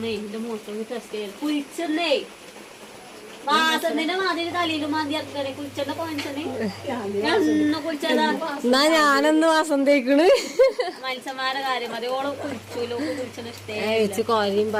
എന്റെ മൂത്രം ടെസ്റ്റ് ചെയ്ത് കുഴിച്ചെന്നേ വാസന്റെ മാതിരി തലയിലും മാതി ഇറക്കണേ. കുഴിച്ചെന്ന പോയിച്ചനെ കുഴിച്ചതാ. എന്നാ ഞാനൊന്ന് വാസം തേക്കണ്. മത്സ്യന്മാരുടെ കാര്യം മതി. ഓള് കുഴിച്ചൂലോ, കുഴിച്ചെന്ന് വെച്ച് കോരയും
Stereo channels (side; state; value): both; identical; correlation 1.00